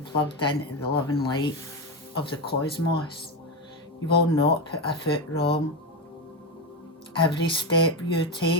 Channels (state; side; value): normal; both; correlation 0.13